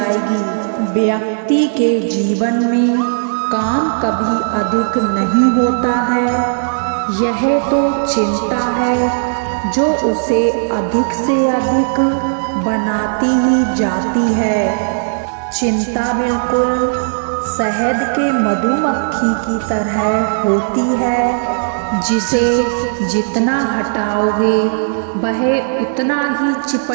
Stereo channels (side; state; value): left; silent; digital silence